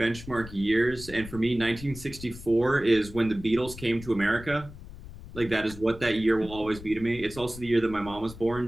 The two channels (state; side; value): noise; left; rumble, 15 dB below the sound